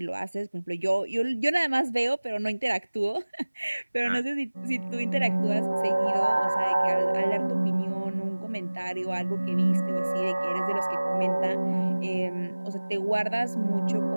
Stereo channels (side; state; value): both; inverted; correlation -1.00